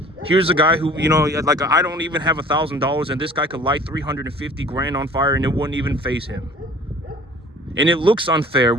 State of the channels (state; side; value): normal; both; correlation 0.48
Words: Here's a guy who, like, I don't even have $1,000 and this guy could light 350 grand on fire and it wouldn't even faze him. And it looks unfair.